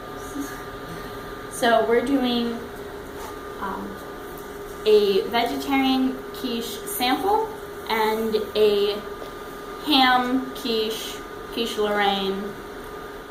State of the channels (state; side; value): identical; both; correlation 1.00